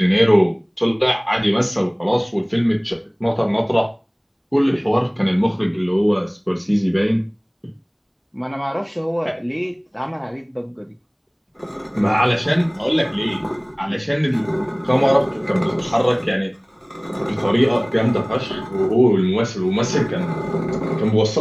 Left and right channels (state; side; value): identical; both; correlation 1.00